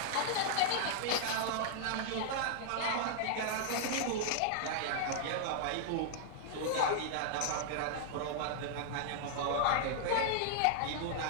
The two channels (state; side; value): different; both; correlation -0.01